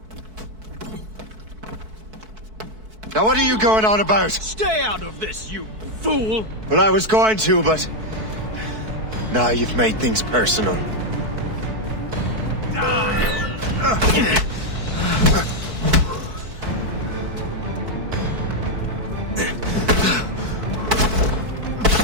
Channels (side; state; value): left; late; 4.6 ms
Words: Now what are you going on about? Stay out of this, you fool! Well, I was going to, but... Now you've made things personal.